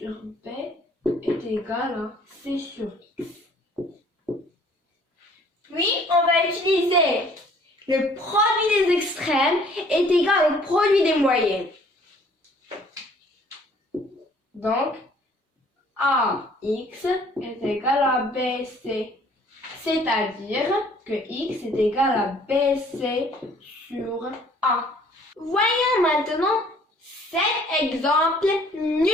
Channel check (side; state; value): both; normal; correlation 0.57